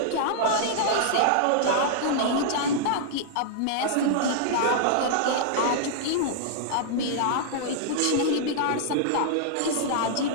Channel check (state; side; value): different; both; correlation -0.01